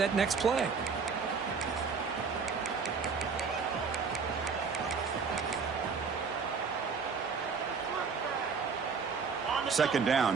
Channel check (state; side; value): quieter; left; 5.4 dB